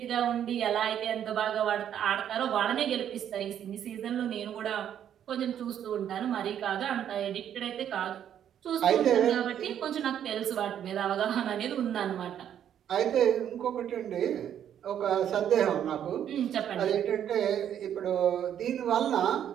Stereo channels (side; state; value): left; quieter; 9.8 dB